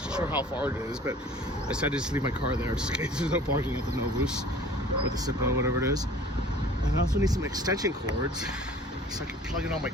sure how far it is, but I decided to just leave my car there just in case there's no parking at the Novus or the Sippo, whatever it is. And I also need some extension cords so I can plug in all my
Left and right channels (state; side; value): normal; both; correlation 0.48